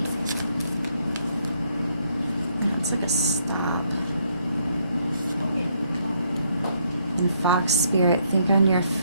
Yeah, it's like a stop. And Fox Spirit, think on your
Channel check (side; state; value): both; inverted; correlation -0.71